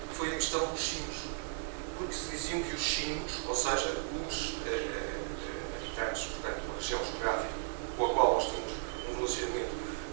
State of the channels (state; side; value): silent; left; digital silence